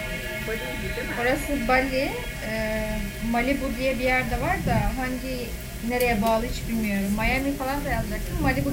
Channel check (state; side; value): identical; both; correlation 1.00